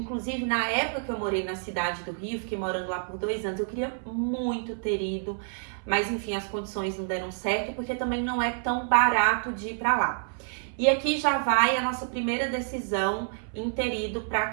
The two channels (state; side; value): silent; left; 59 dB below the other